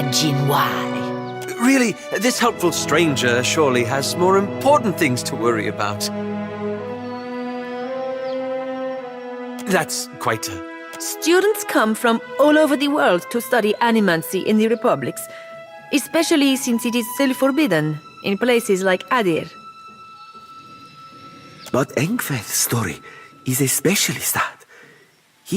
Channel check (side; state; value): both; identical; correlation 1.00